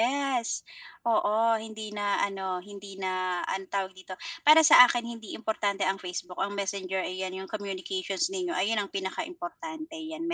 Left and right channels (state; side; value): identical; both; correlation 1.00